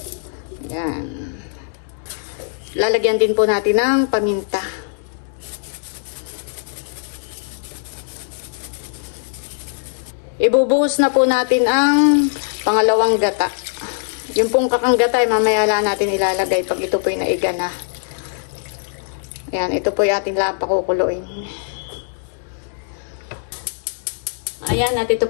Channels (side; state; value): right; silent; digital silence